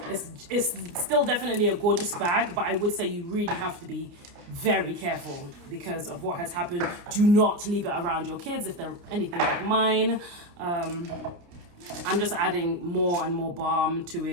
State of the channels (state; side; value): late; left; 29 ms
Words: it's still definitely a gorgeous bag, but I would say you really have to be very careful because of what has happened. Do not leave it around your kids if they're anything like mine. I'm just adding more and more balm to